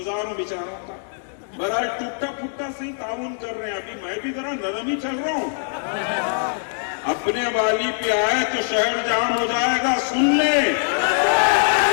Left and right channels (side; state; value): right; silent; digital silence